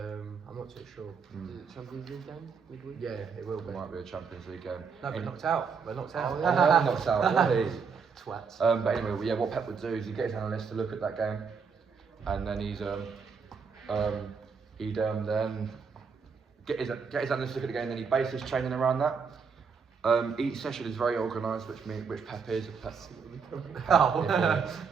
not too sure. Is it Champions League game midweek? Yeah, it will It be. might be a Champions League game. No, we're In- knocked out. We're knocked out. Oh, Oh, yeah, knocks out. Really? Twats. But anyway, yeah, what Pep would do is he'd get his analysts to look at that game, and then he'd then get his analysts to look at the game, and then he'd base his training around that. Each session is very organised, which Pep is. Oh. Yeah,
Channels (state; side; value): quieter; left; 5.7 dB